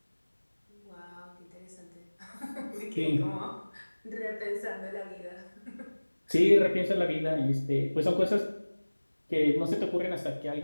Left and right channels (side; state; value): both; inverted; correlation -1.00